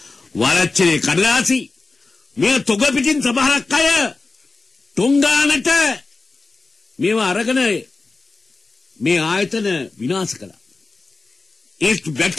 වරච්චලේ කඩදාසි මේ තොග පිටින් සමහරක් අය ටොංගානට මේවා අරගෙන මේ ආයතන විනාශ කළා. ඒ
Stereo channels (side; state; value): right; quieter; 3.7 dB